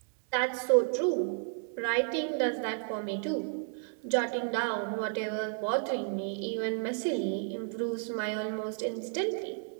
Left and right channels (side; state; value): left; silent; 56 dB below the other